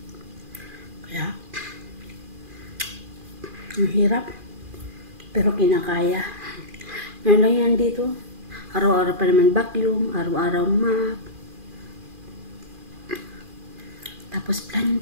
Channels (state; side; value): late; left; 2.4 ms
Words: Kaya, ang hirap. Pero kinakaya. Ngayon lang yan dito. Araw-araw pa naman vacuum, araw-araw map. Tapos